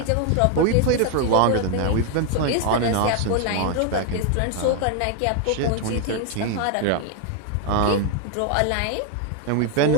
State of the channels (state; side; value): different; both; correlation 0.00